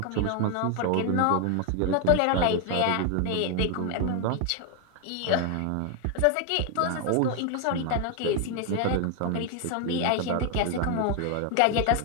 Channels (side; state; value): both; different; correlation 0.01